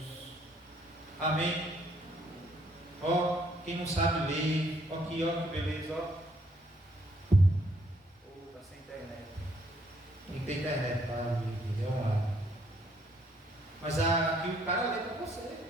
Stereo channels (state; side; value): normal; both; correlation 0.68